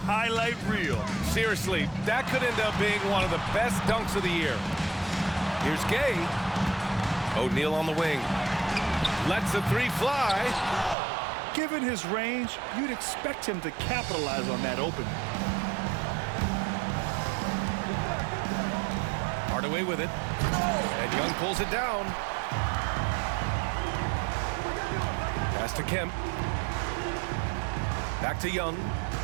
reel. Seriously, that could end up being one of the best dunks of the year. Here's Gay. O'Neal on the wing. Lets the three fly. Given his range, you'd expect him to capitalize on that opening. Hardaway with it. And Young pulls it down. Pass to Kemp. Back to Young.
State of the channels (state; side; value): drops out; left; at 11.0 s